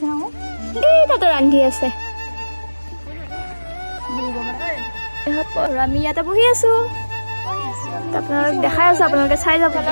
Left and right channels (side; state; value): both; inverted; correlation -1.00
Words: এই তাতে ৰান্ধি আছে আমি ইয়াতে বহি আছোঁ আপোনালোক দেখাই আছোঁ আপোনালোকে চাই যাব